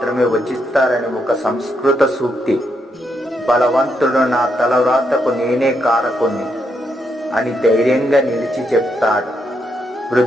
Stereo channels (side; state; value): both; normal; correlation 0.79